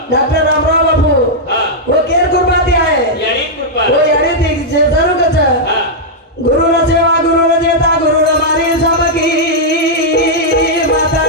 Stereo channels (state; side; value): normal; both; correlation -0.06